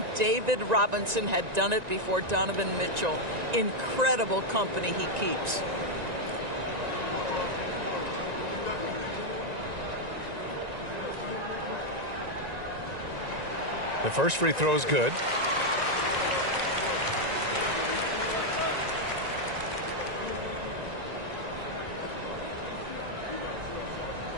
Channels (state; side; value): late; left; 1.9 ms